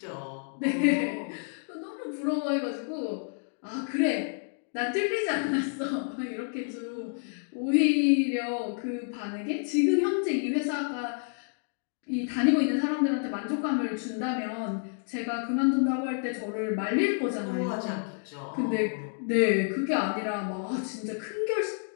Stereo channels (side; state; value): right; silent; 58 dB below the other